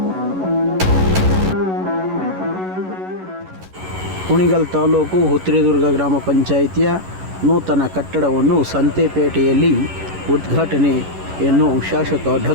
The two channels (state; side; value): late; left; 11 ms